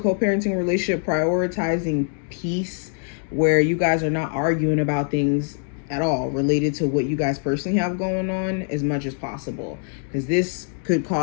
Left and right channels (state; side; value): silent; right; 57 dB below the other